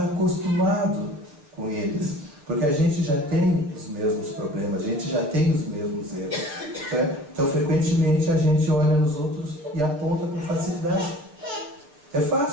acostumado com eles. Porque a gente já tem os mesmos problemas, a gente já tem os mesmos erros. Então, frequentemente, a gente olha nos outros e aponta com facilidade. É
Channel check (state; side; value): late; left; 6.8 ms